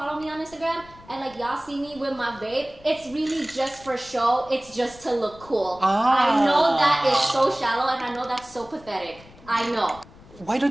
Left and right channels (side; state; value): left; noise; rumble, 22 dB below the sound